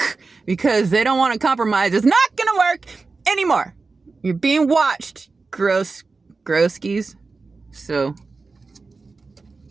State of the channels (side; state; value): left; quieter; 4.0 dB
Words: because they don't want to compromise is not gonna work anymore. You're being watched, grosskies. So,